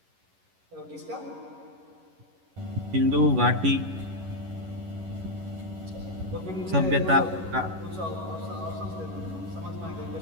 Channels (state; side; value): late; left; 11 ms